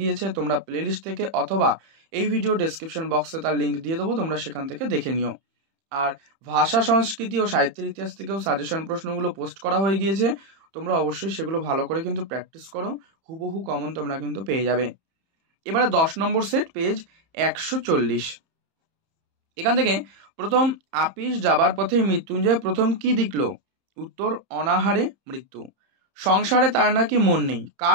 গিয়েছে। তোমরা প্লেলিস্ট থেকে অথবা এই ভিডিও ডেসক্রিপশন বক্সে তার লিঙ্ক দিয়ে দেবো, তোমরা সেখান থেকে দেখে নিও। আর ভাষা, সংস্কৃতি ও সাহিত্যের ইতিহাস থেকেও সাজেশন প্রশ্নগুলো পোস্ট করা হয়ে গিয়েছে, তোমরা অবশ্যই সেগুলো ভালো করে কিন্তু প্র্যাকটিস করো, হুবহু কমন তোমরা কিন্তু পেয়ে যাবে। এবারে 10 নম্বর সেট, পেজ 140। এখান থেকে প্রথম, আপিস যাবার পথে মৃত্যুঞ্জয় প্রথম কি দেখল? উত্তর, অনাহারে মৃত্যু। সংসারে তার নাকি মন নেই,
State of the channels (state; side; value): late; left; 31 ms